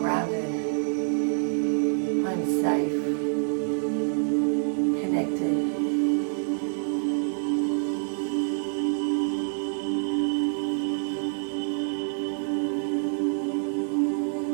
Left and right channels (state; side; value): silent; left; digital silence